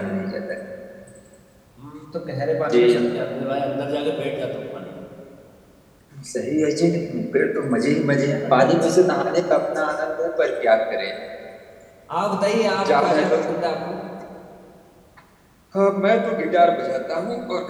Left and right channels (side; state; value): both; identical; correlation 1.00